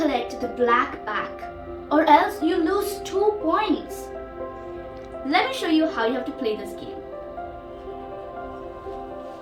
the black pack or else you lose 2 points. Let me show you how you have to play this game.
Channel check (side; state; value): both; identical; correlation 1.00